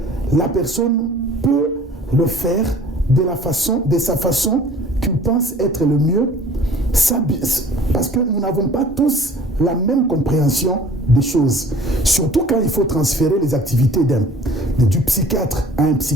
la personne peut le faire de sa façon qu'il pense être le mieux, parce que nous n'avons pas tous la même compréhension des choses. Surtout quand il faut transférer les activités du psychiatre à un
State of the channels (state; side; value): normal; both; correlation 0.49